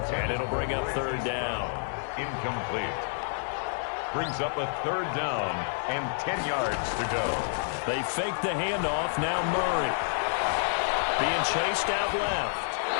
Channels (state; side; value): silent; right; digital silence